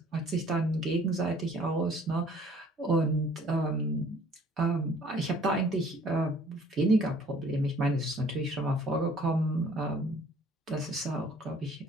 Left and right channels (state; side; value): normal; both; correlation 0.56